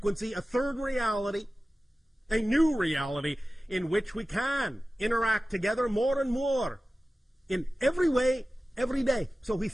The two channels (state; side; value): normal; both; correlation 0.96